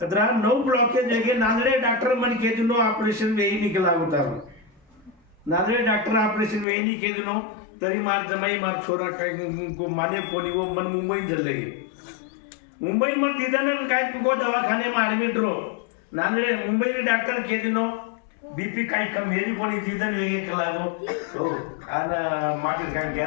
9 ब्लॉकेज वेगे नांदेड डॉक्टर मन के दिनो ऑपरेशन वेही निकला होता नांदेड डॉक्टर ऑपरेशन वेही नि के दिनो तरी मार जमाई मार छोरा काय को माने कोणी वो मन मुंबई जल्ले मुंबई में तिथं काय को दवाखाने में ऍडमिट रो नांदेड मुंबई डॉक्टर के दिनो बीपी काही कम हेरी कोणी तिथं वेगळे कलागो हो आणि मागे काय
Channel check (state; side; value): drops out; right; at 6.7 s